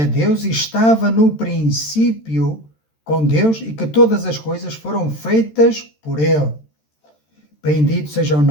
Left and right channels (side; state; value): right; late; 13 ms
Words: Deus, estava no princípio com Deus e que todas as coisas foram feitas por ele. Bendito seja o